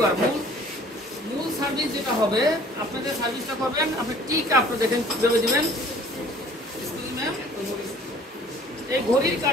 মূল সার্ভিস যেটা হবে, আপনাদের সার্ভিসটা করবেন আপনি টি কাপটা দেখেন কিভাবে দিবেন। এই ঘড়ির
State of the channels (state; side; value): normal; both; correlation 0.53